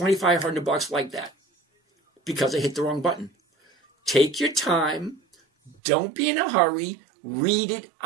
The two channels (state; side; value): drops out; left; at 5.8 s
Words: like that because I hit the wrong button. Take your time. Don't be in a hurry. Read it